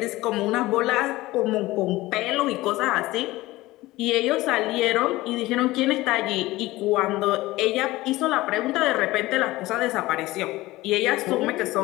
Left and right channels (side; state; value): right; quieter; 18.6 dB